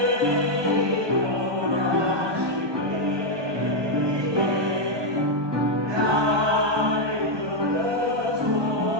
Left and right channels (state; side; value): late; left; 1.2 ms